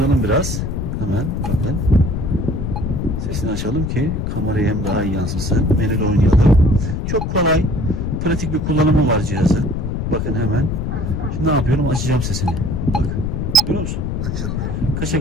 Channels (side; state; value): left; noise; rumble, 2 dB below the sound